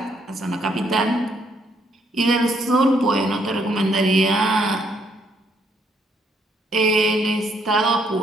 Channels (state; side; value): normal; both; correlation 0.71